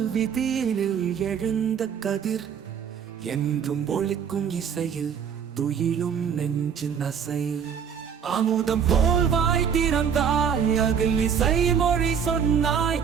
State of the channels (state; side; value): quieter; left; 7.5 dB